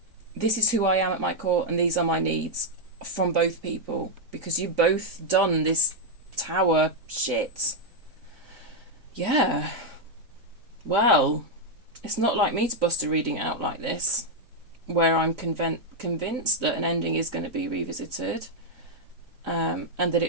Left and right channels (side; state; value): left; late; 3.9 ms